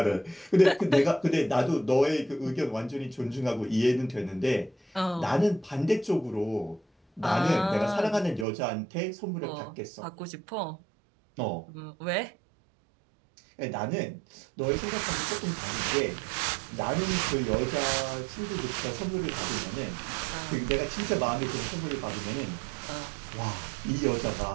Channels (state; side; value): drops out; left; at 8.5 s